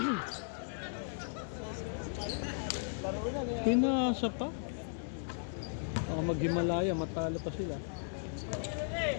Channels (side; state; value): right; silent; digital silence